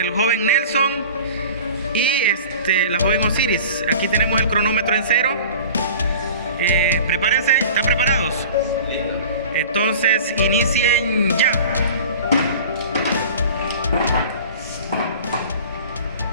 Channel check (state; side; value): inverted; both; correlation -0.40